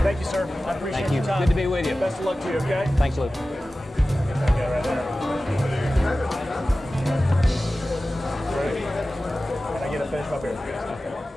Thank you, sir. I appreciate Thank you. your time. Good to be with you. Best of luck to you, okay? Thanks, Lew. Okay, right there. Can I get a finish my beer?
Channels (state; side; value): normal; both; correlation 0.95